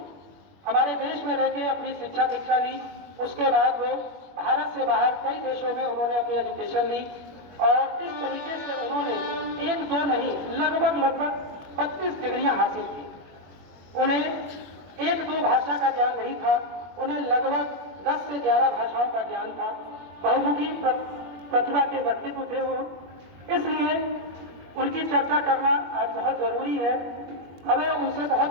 हमारे देश में रहकर अपनी शिक्षा दीक्षा ली। उसके बाद वो भारत से बाहर कई देशों में उन्होंने अपनी एजुकेशन ली और इस तरीके से उन्होंने एक दो नहीं, लगभग 32 डिग्रियां हासिल की। उन्हें एक दो भाषा का ज्ञान नहीं था, उन्हें लगभग 10 से 11 भाषाओं का ज्ञान था। बहुमुखी प्रतिभा के व्यक्तित्व थे वो, इसलिए उनकी चर्चा करना आज बहुत जरूरी है। हमें उनसे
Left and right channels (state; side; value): late; left; 21 ms